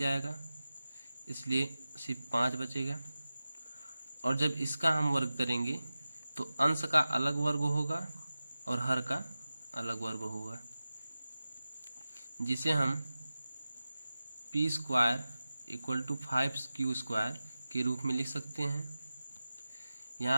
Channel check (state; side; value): inverted; both; correlation -0.95